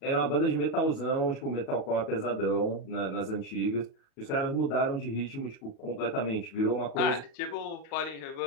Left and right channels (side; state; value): right; late; 37 ms